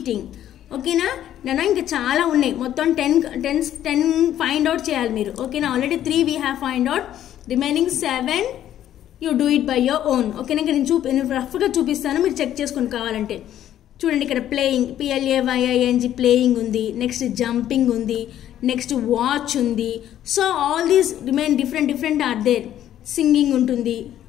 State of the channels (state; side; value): quieter; right; 11.6 dB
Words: ఓకేనా నాన్న, ఇంకా చాలా ఉన్నాయి, మొత్తం 10 find out చేయాలి మీరు. ఓకేనా, already 3 we have find out, remaining 7 you do it by your own. ఓకేనా, ఇంకా నేను రఫ్గా చూపిస్తాను, మీరు చెక్ చేసుకుని కావాలంటే. చూడండి ఇక్కడ ప్లేయింగ్, PLAYING, ప్లేయింగ్ ఉంది. నెక్స్ట్ జంపింగ్ ఉంది, నెక్స్ట్ వాచ్ ఉంది. So all these remain different are there. Singing ఉంటుంది.